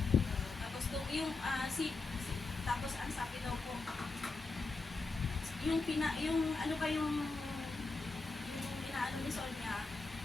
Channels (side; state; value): right; quieter; 3.8 dB